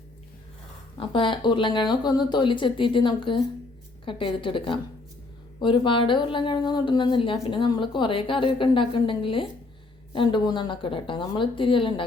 അപ്പോൾ ഉരുളൻകിഴങ്ങൊക്കെ ഒന്ന് തൊലി ചെത്തിയിട്ട് നമുക്ക് കട്ട് ചെയ്തിട്ട് എടുക്കാം. ഒരുപാട് ഉരുളൻകിഴങ്ങൊന്നും ഇടണമെന്നില്ല. പിന്നെ നമ്മൾ കുറേ കറിയൊക്കെ ഉണ്ടാക്കുന്നുണ്ടെങ്കിൽ 2-3 എണ്ണമൊക്കെ ഇടാം കേട്ടോ. നമ്മൾ ഇത്തിരിയല്ലേ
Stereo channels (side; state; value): right; quieter; 3.3 dB